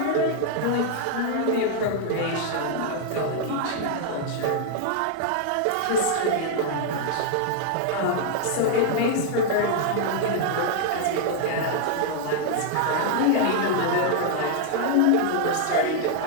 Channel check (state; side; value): different; both; correlation -0.01